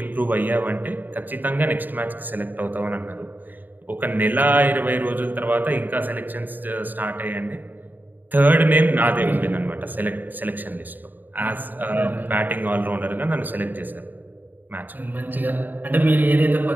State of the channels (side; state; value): left; late; 0.088 ms